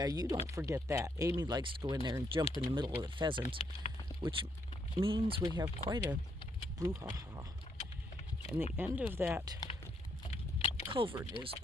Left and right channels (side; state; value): both; normal; correlation 0.75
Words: you don't forget that. Amy likes to go in there and jump in the middle of the pheasants, which means we have quite a brouhaha. And the end of that culvert is